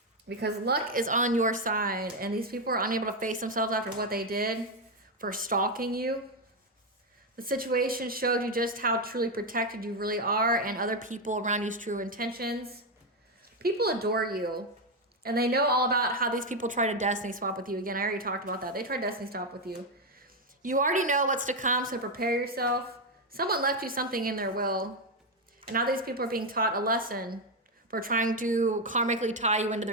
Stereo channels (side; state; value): both; normal; correlation 0.06